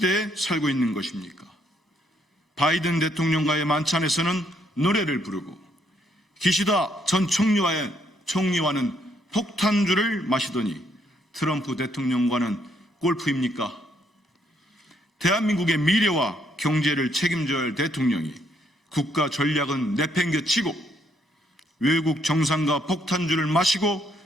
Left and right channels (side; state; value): both; normal; correlation 0.72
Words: 살고 있는 것입니까? 바이든 대통령과의 만찬에서는 노래를 부르고 기시다 전 총리와는 폭탄주를 마시더니 트럼프 대통령과는 골프입니까? 대한민국의 미래와 경제를 책임져야 할 대통령이 국가 전략은 내팽개치고 외국 정상과 폭탄주를 마시고